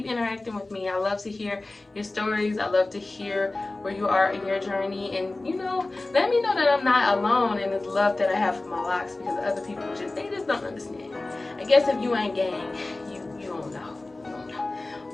interacting with me. I love to hear your stories. I love to hear where you are in your journey, and you know, let me know that I'm not alone in this love that I have for my locks, because other people they just don't understand. I guess if you ain't gang, you don't know.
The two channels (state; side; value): quieter; right; 3.0 dB